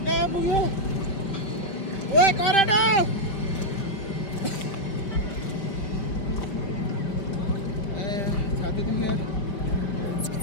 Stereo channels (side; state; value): right; late; 5.1 ms